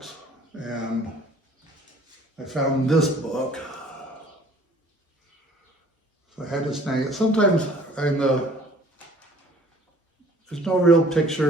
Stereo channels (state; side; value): normal; both; correlation 0.53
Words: and I found this book. So I had to snag it. Sometimes there's no real